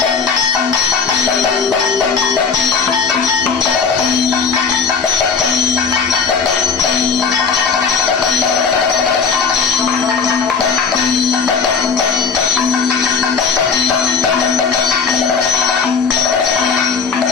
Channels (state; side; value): quieter; right; 5.6 dB